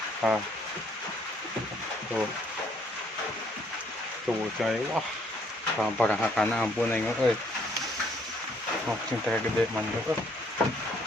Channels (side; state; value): both; normal; correlation 0.66